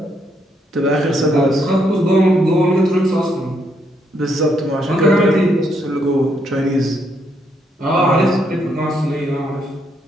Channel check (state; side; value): normal; both; correlation 0.75